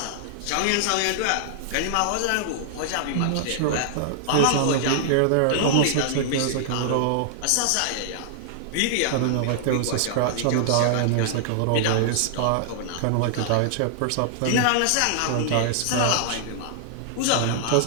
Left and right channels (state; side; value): different; both; correlation -0.01